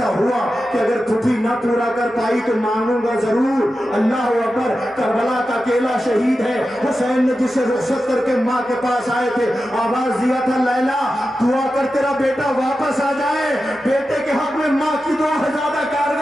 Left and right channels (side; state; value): both; normal; correlation 0.91